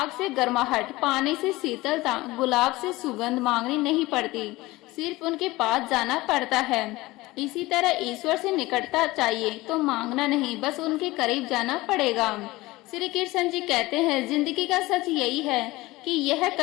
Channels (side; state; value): right; quieter; 19.8 dB